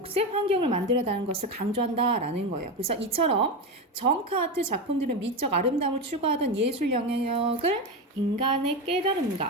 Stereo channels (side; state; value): both; normal; correlation 0.17